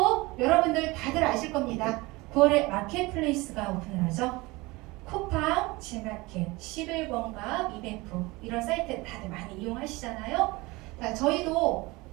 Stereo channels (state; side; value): quieter; left; 22.7 dB